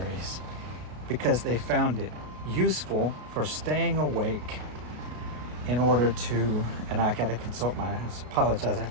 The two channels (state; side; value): late; left; 33 ms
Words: because they found it useful for staying awake in order to, and I have to consult